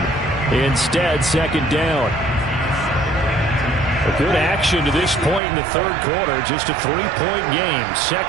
Instead, 2nd down. A good action to this point in the 3rd quarter. Just a 3-point game.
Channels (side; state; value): left; drops out; at 5.4 s